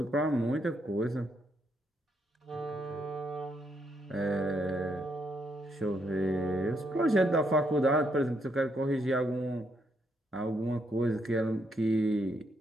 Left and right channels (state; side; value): normal; both; correlation 0.76